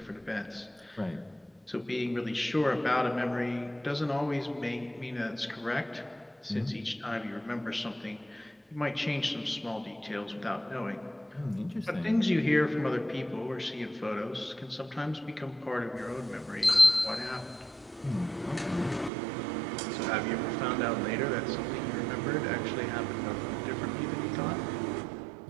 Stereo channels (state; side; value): drops out; left; at 19.1 s